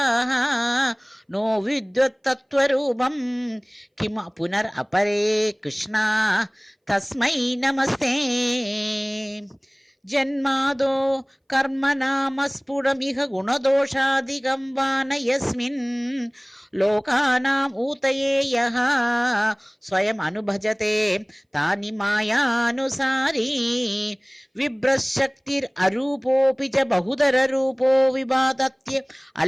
നോ വിദ്വത്തത്വരൂപം കിം പുനർ അപരേ കൃഷ്ണ തസ്മൈ നമസ്തേ. ജന്മാദോ കർമ്മനാമസ്ഫുടമിഹ ഗുണദോഷാദികം വാന യസ്മിൻ ലോകാനാം ഊതയേ യഃ സ്വയം അനുഭജത്തെ താനി മായാനുസാരീ വിഭ്രശക്തിർ അരൂപോപി ച ബഹുധരരൂപോ വിഭാതത്യ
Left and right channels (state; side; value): identical; both; correlation 1.00